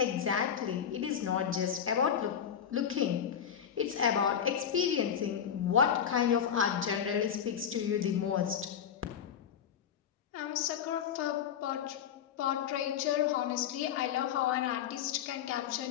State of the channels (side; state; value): right; quieter; 8.5 dB